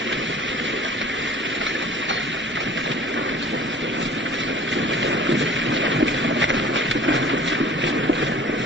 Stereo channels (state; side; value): normal; both; correlation 0.47